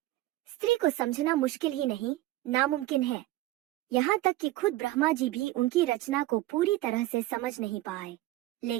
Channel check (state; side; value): quieter; left; 16.8 dB